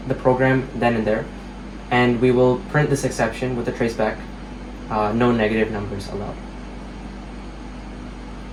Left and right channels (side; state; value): both; identical; correlation 1.00